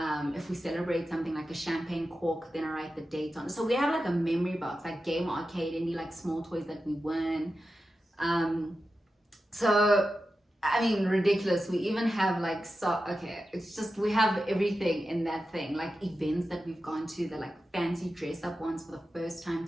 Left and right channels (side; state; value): both; normal; correlation 0.92